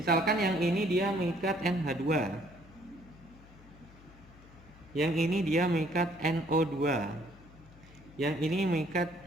yang ini dia mengikat NH2, yang ini dia mengikat NO2, yang ini mengikat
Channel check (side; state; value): left; noise; hum, 22 dB below the sound